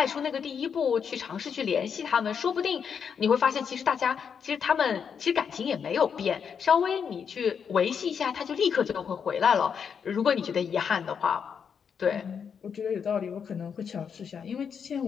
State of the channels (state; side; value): quieter; right; 6.9 dB